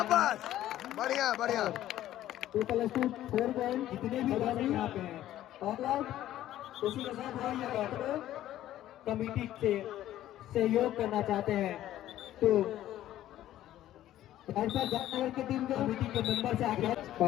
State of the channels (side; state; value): right; quieter; 13.2 dB